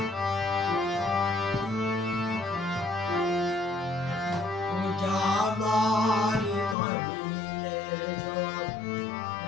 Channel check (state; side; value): drops out; right; at 6.8 s